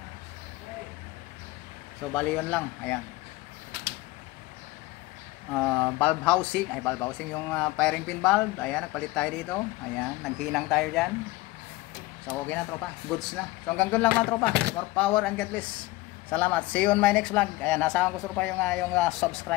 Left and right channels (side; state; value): right; quieter; 19.1 dB